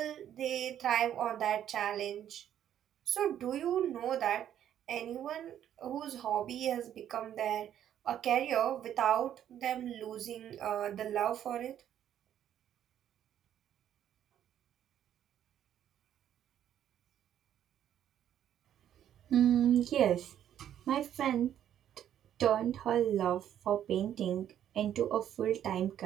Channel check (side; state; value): left; quieter; 10.5 dB